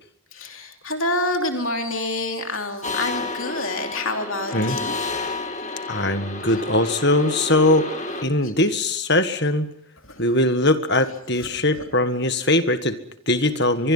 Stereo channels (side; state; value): both; normal; correlation 0.08